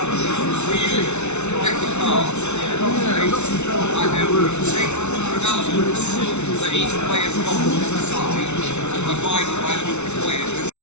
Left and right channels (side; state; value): right; late; 0.82 ms